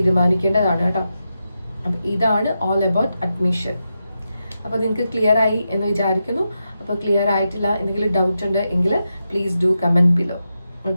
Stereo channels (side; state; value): both; inverted; correlation -0.88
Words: കേട്ടോ. അപ്പൊ ഇതാണ് ഓൾ അബൌട്ട് അഡ്മിഷൻ. അപ്പൊ നിങ്ങൾക്ക് ക്ലിയർ ആയി എന്ന് വിചാരിക്കുന്നു. അപ്പൊ ക്ലിയർ ആയിട്ടില്ല, എന്തെങ്കിലും ഡൗട്ട് ഉണ്ട് എങ്കിൽ please do comment below.